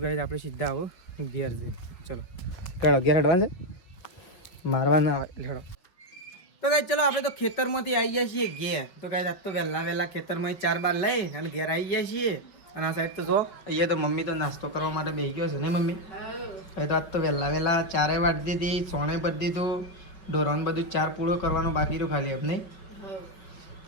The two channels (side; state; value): right; late; 5.3 ms